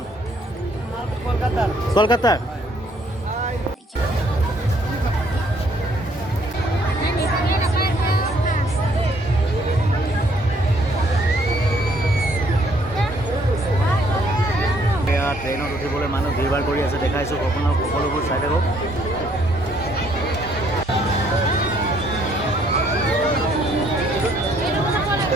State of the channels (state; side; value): normal; both; correlation 0.66